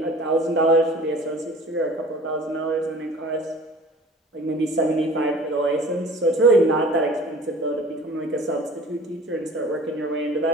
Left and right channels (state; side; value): normal; both; correlation 0.45